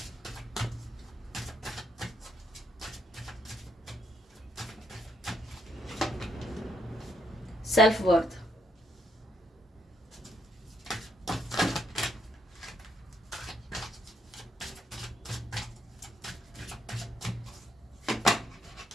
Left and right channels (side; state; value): both; normal; correlation 0.74